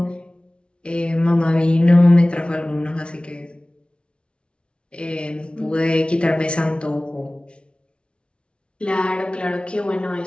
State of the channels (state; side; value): late; right; 0.058 ms